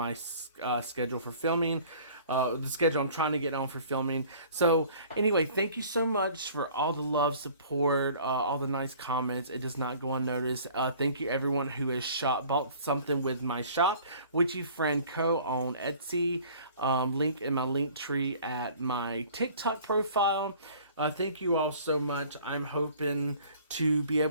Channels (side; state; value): both; inverted; correlation -0.50